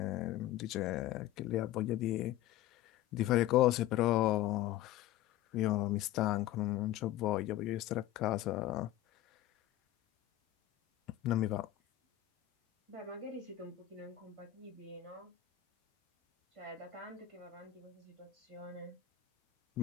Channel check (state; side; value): quieter; right; 14.0 dB